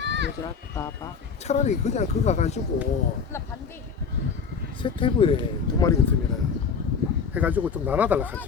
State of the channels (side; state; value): right; quieter; 5.8 dB